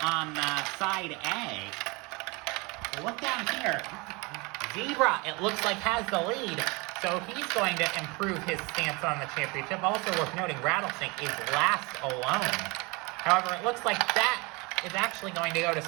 on side A. Look down here. Zebra, it looks like, has the lead, so he's going to improve his stance on the championship. Also worth noting, Rattlesnake is last alone. However, it looks like that is actually going to go to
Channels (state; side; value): quieter; left; 26.8 dB